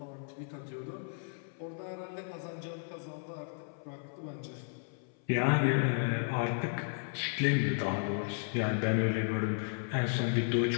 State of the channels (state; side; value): silent; right; 55 dB below the other